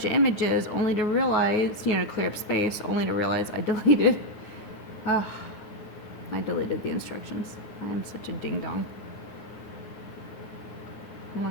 of images only to realize, you know, clear up space, only to realize I deleted the instructions. I am such a ding dong. I'm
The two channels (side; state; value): right; late; 9.4 ms